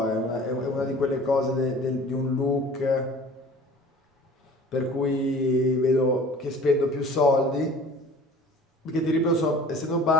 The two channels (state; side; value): normal; both; correlation 0.46